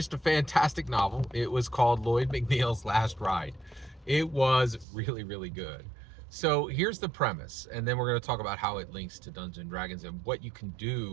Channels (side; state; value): left; drops out; at 4.9 s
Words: a fantastic novel. It was called Lloyd McNeils' Last Ride. It was really, really good. So here's the premise, and then we're going to talk about how it links to Dungeons and Dragons and what you can